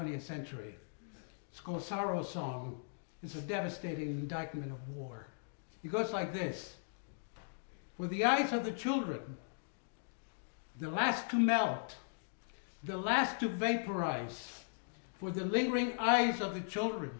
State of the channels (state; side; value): silent; right; digital silence